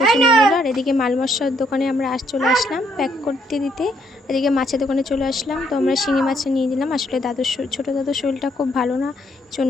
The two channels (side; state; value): both; normal; correlation 0.71